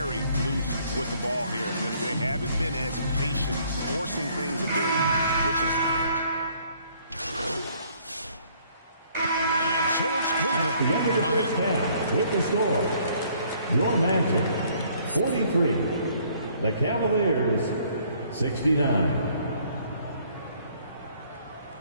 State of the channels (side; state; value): both; inverted; correlation -0.62